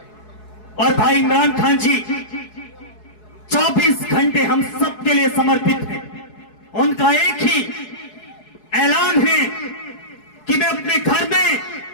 और भाई इमरान खान जी 24 घंटे हम सब के लिए समर्पित हैं। उनका एक ही ऐलान है कि मैं अपने घर में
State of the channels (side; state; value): right; late; 4.7 ms